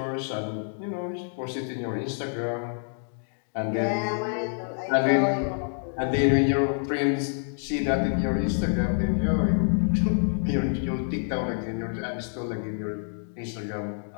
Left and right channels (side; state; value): right; silent; digital silence